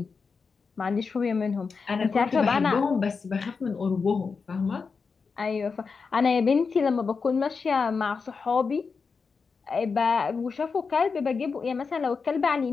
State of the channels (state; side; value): quieter; right; 5.1 dB